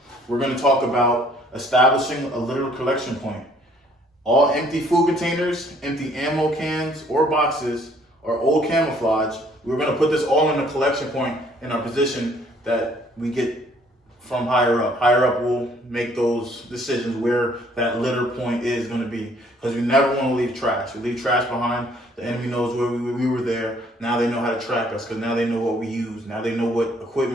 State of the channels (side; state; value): both; normal; correlation 0.61